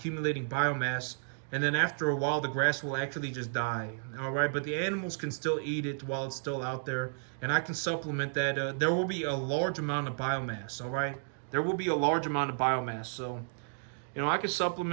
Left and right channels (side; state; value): left; silent; digital silence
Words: biomass, and then after a while, the grass will actually just die. All right, but the animals can still eat it while it's still out there, and I can supplement that. There will be a large amount of biomass. All right, there will be a large amount of biomass, so. I can